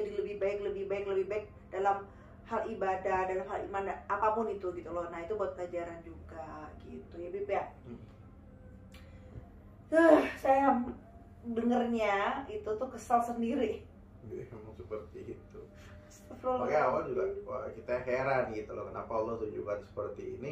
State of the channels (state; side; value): identical; both; correlation 1.00